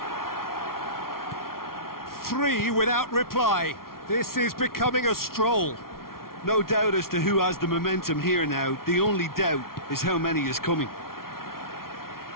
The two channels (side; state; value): right; late; 0.93 ms